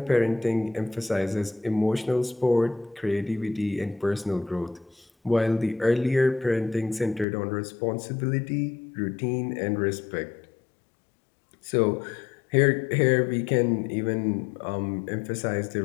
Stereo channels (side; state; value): right; drops out; at 7.2 s